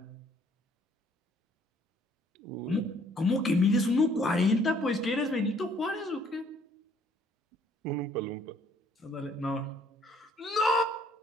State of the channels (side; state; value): both; normal; correlation 0.62